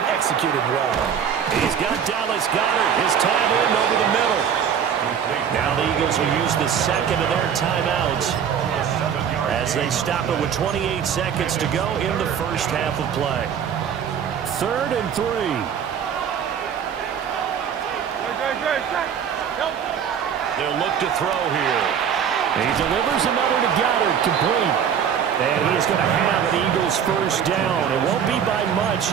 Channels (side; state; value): left; quieter; 8.1 dB